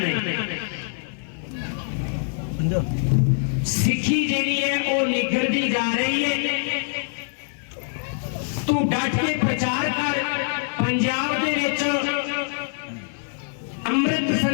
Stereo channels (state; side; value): silent; right; 57 dB below the other